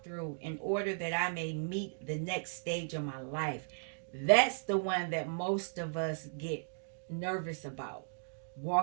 through in order that I may meet the next stage of my life? That's the one that most of us get nervous about.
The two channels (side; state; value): left; silent; digital silence